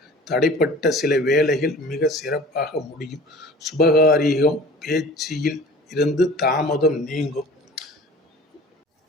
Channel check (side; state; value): both; normal; correlation 0.43